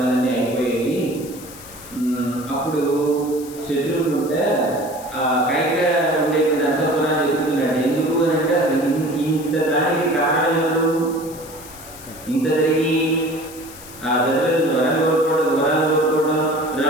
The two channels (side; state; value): left; noise; hiss, 17 dB below the sound